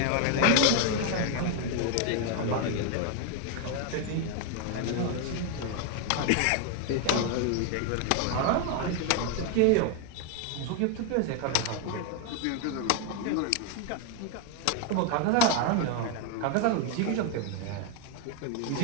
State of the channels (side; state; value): both; different; correlation 0.01